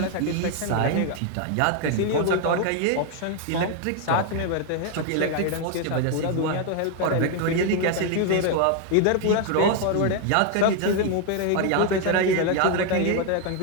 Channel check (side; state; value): both; different; correlation 0.01